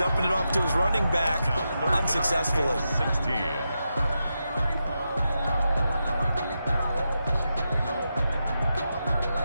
it off to his running back unsuccessfully. 16.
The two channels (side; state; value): both; inverted; correlation -0.87